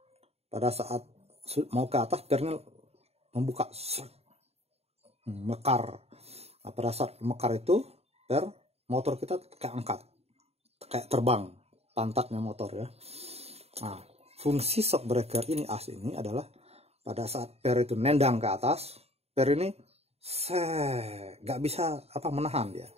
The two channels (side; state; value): left; late; 0.30 ms